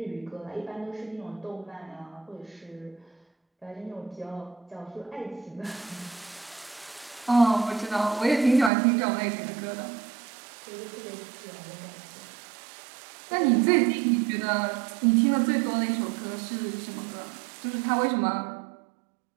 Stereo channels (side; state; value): left; drops out; at 8.7 s